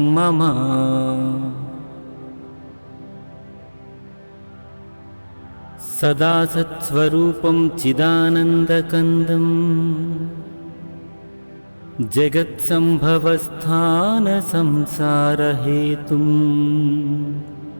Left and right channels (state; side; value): inverted; both; correlation -1.00